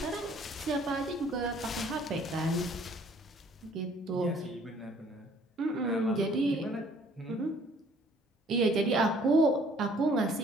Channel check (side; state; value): both; normal; correlation 0.58